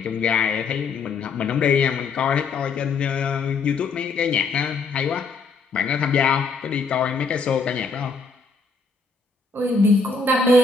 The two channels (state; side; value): quieter; right; 4.5 dB